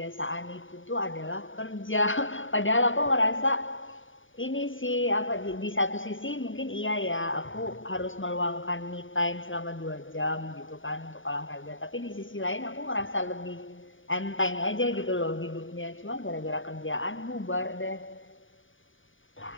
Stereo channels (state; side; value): late; right; 0.57 ms